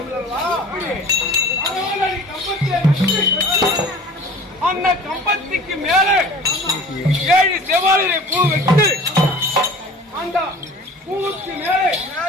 அல்லவா? அந்த கம்பத்துக்கு மேலே 7 செவ்வாழை பூ வைத்து அந்த பூவுக்கு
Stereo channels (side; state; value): both; normal; correlation 0.43